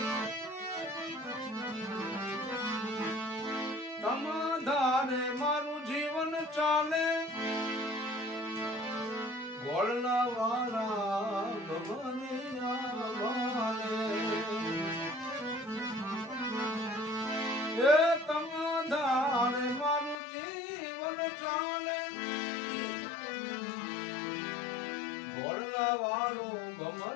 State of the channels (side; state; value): right; drops out; at 20.2 s